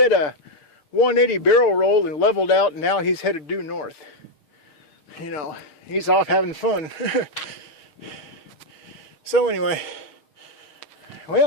a 180 barrel roll and leveled out, and now he's headed due north. You know, he's off having fun. So anyway,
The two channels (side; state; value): right; late; 6.3 ms